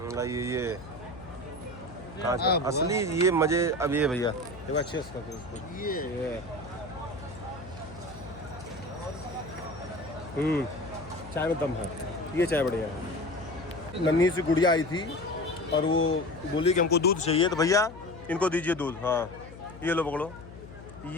ये कांच असली ये मजे। अब ये भैया एक बार अच्छे से ये चाय में दम है। ये चाय बढ़िया है। नन्ही सी गुड़िया आई थी और वो बोली कि हमको दूध चाहिए, तो भैया इनको दीजिए दूध। हाँ ये लो पकड़ो।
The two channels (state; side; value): noise; left; hum, 16 dB below the sound